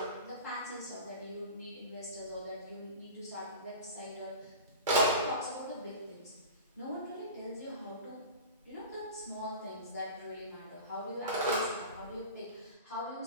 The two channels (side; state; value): both; inverted; correlation -0.33